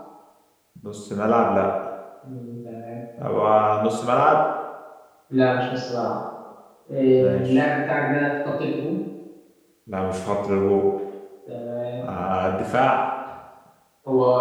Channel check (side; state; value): both; identical; correlation 1.00